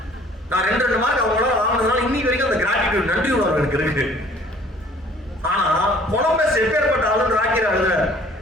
நான் 2 மார்க் அவங்களால வாங்கினதுனால இன்னைக்கு வரைக்கும் அந்த கிராட்டிடியூட், நன்றி உணர்வு எனக்கு இருக்கு. ஆனா கொலம்பஸ் எப்பேற்பட்ட ஆளுன்னு ராக்கிரா எழுதுற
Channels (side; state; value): both; normal; correlation 0.54